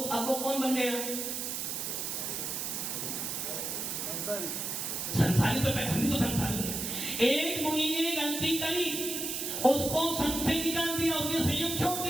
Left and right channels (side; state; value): right; noise; hiss, 3 dB below the sound